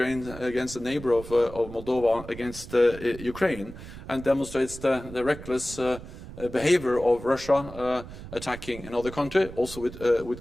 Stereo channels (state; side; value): noise; right; rumble, 14 dB below the sound